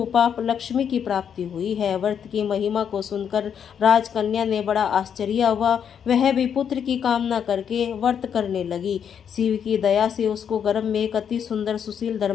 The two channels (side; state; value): right; quieter; 8.1 dB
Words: लक्ष्मी की प्राप्ति हुई है। व्रत की महिमा को सुनकर राजकन्या ने बड़ा आश्चर्य हुआ। वह भी पुत्र की कामना करके व्रत करने लगी। शिव की दया से उसको गर्भ में एक अति सुंदर सुशील